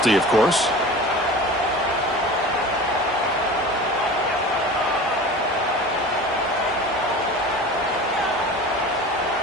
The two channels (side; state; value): both; normal; correlation 0.36